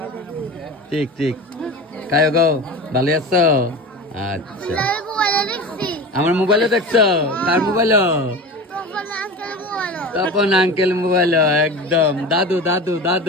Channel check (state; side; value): normal; both; correlation 0.31